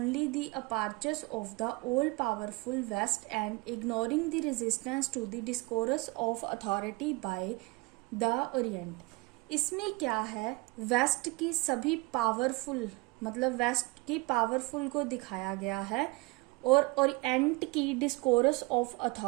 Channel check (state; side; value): quieter; left; 24.5 dB